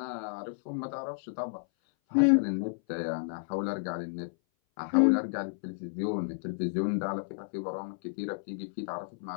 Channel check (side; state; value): right; silent; 57 dB below the other